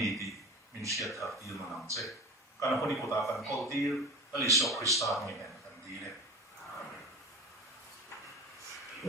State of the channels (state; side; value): normal; both; correlation 0.32